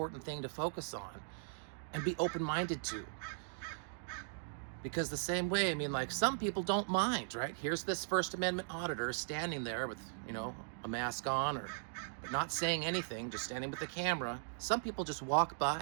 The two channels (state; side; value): silent; left; digital silence